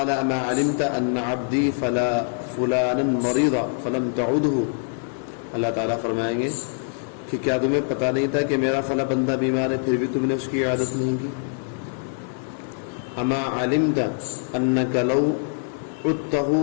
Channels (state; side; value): silent; right; digital silence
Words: اما علمت ان عبدی فلانا مريض فلم تعده، اللہ تعالیٰ فرمائیں گے کہ کیا تمہیں پتہ نہیں تھا کہ میرا فلاں بندہ بیمار ہے پھر بھی تم نے اس کی عیادت نہیں کی۔ اما علمت انک لو عدته